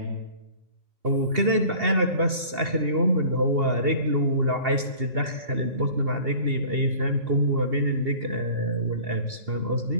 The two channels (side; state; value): left; late; 2.8 ms